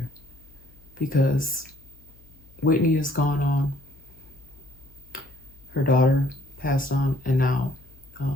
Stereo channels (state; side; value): noise; left; hum, 26 dB below the sound